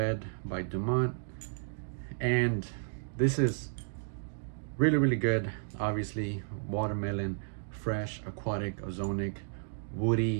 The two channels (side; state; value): left; silent; digital silence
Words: by Dumont, and this is really good. Obviously, watermelon, fresh, aquatic, ozonic,